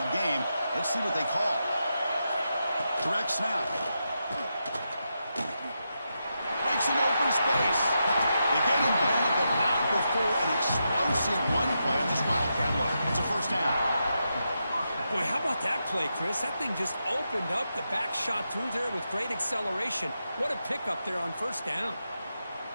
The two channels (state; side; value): inverted; both; correlation -0.86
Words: game. Let's see what they call. Direct snap. Breaks an open space. They get him down, but not before an explosive run play on this Wildcat look. It's a first down. Boy, how about that play, Chris? That thing just opened up. The back shot through there with great acceleration. What a pickup there on first down.